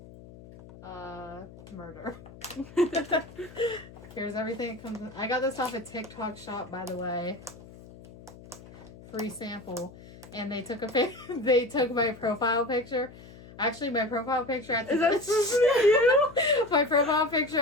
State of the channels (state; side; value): noise; left; hum, 19 dB below the sound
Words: murder. Here's everything that comes in. I got this off a TikTok shop, by the way. Free sample. And they took they took my profile picture. Actually, my profile picture at the time. Is that supposed to be you? My profile picture